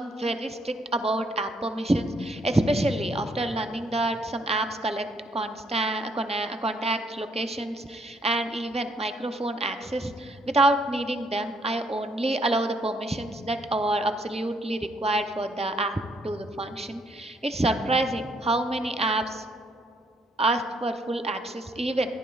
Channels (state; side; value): normal; both; correlation 0.70